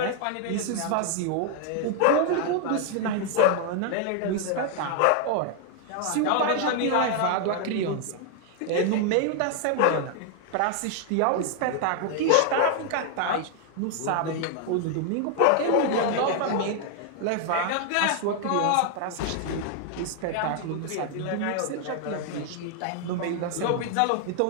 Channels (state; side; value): different; both; correlation 0.00